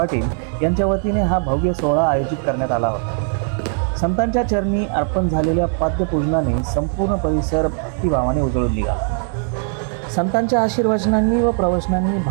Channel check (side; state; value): left; silent; 55 dB below the other